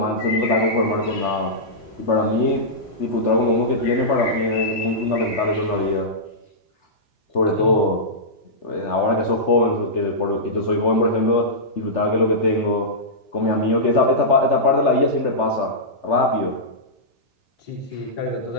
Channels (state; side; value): late; right; 3.4 ms